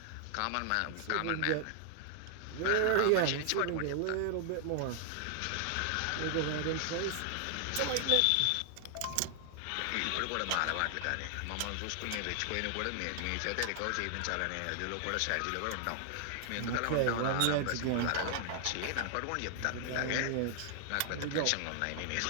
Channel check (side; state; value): both; different; correlation 0.00